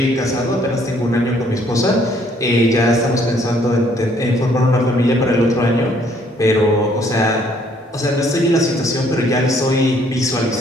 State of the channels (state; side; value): normal; both; correlation 0.64